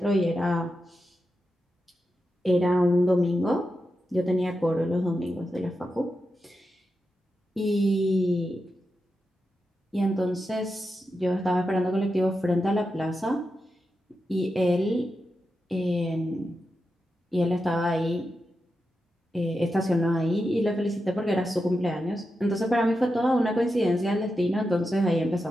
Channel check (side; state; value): both; normal; correlation 0.88